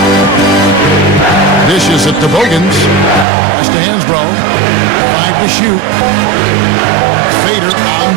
Dishes it to Bogans. Pass to Hansbrough. 5 to shoot. Fader on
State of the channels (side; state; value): left; drops out; at 3.2 s